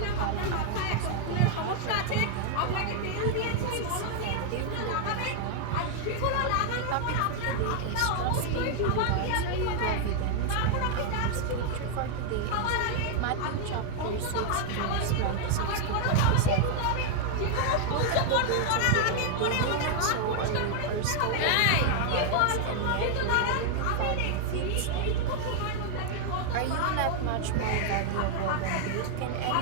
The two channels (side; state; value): both; different; correlation 0.00